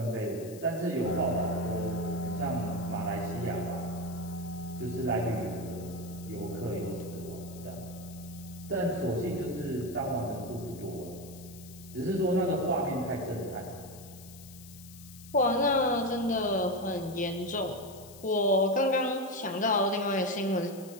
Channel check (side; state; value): left; noise; hiss, 18 dB below the sound